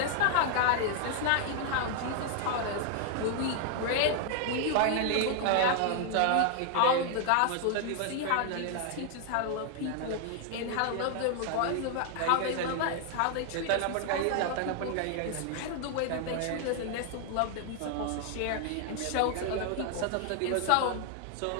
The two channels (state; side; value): different; both; correlation 0.00